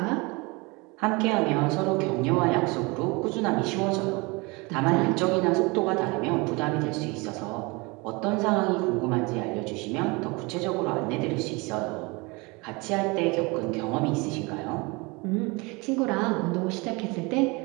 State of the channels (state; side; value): quieter; left; 26.5 dB